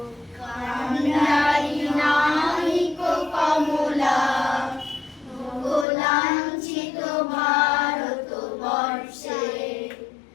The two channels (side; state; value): right; drops out; at 5.9 s